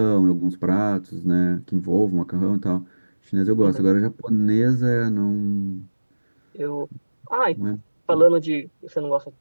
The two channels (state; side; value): inverted; both; correlation -1.00